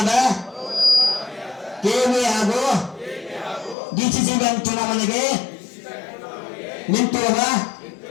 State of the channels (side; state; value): right; drops out; at 3.8 s